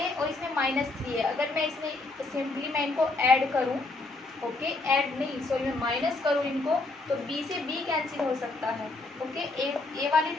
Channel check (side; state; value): right; quieter; 3.2 dB